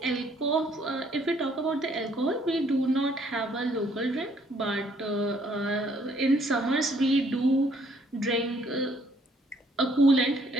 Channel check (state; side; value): normal; both; correlation 0.65